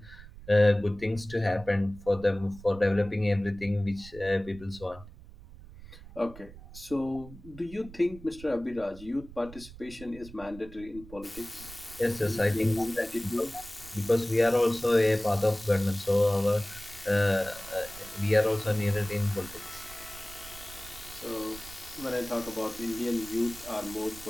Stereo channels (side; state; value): right; noise; rumble, 18 dB below the sound